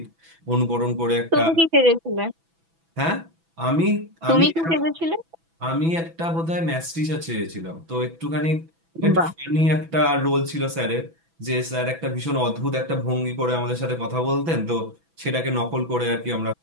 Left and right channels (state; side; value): late; left; 6.0 ms